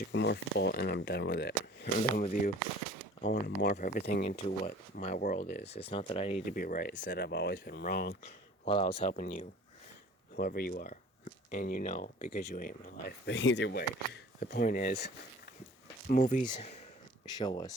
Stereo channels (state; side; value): normal; both; correlation 0.46